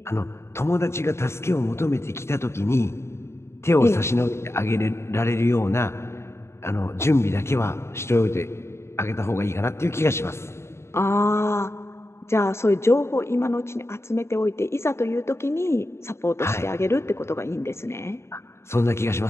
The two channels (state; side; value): late; right; 0.13 ms